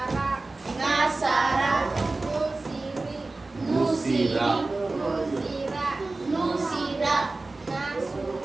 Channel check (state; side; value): quieter; left; 3.3 dB